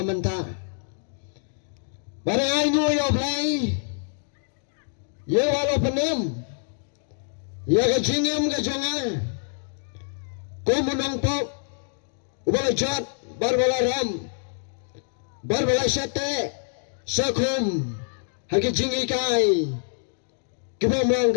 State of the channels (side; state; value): right; silent; 61 dB below the other